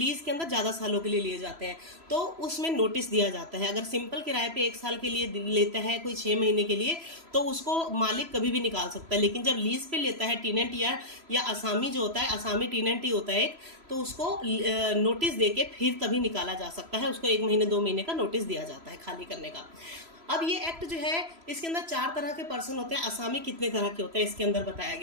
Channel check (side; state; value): left; late; 3.0 ms